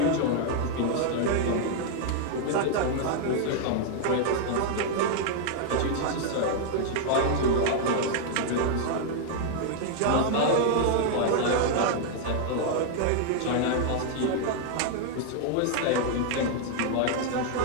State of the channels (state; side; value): different; both; correlation 0.00